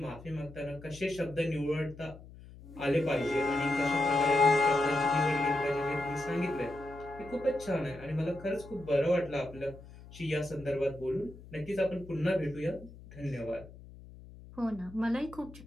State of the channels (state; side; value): noise; left; hum, 18 dB below the sound